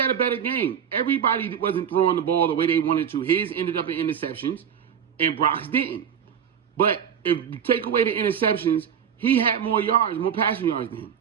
game. Everybody wasn't throwing the ball the way they wanted to. His ended up in interceptions, and Brock's didn't. But if you take away the interceptions, he had more passing yards than him.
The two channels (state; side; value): quieter; left; 8.1 dB